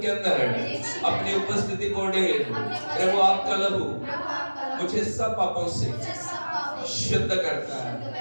के अंदर अपनी उपस्थिति को ढेर। प्रभु आपका लहू मुझे सब पापों से शुद्ध करता है।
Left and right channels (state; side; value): inverted; both; correlation -1.00